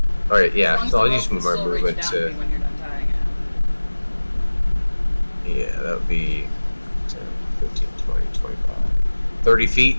Alright, yeah, As long as so the I'll rope use can my still reach movement down to to. me when you're done tying it. Yeah, that would be 10, 15, 20, 25. 30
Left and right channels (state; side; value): inverted; both; correlation -1.00